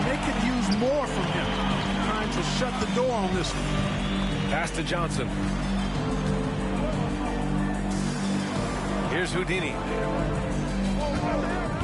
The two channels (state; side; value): identical; both; correlation 1.00